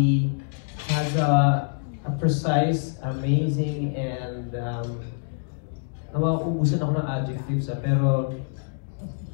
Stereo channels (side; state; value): right; silent; 61 dB below the other